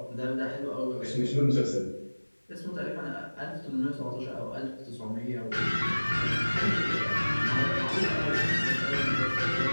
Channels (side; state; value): both; inverted; correlation -1.00